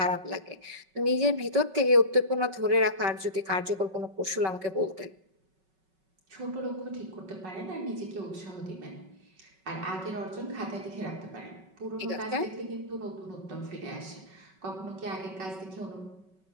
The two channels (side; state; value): left; late; 5.3 ms